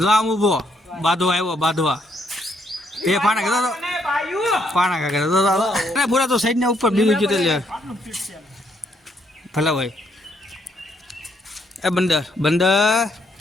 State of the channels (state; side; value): normal; both; correlation 0.72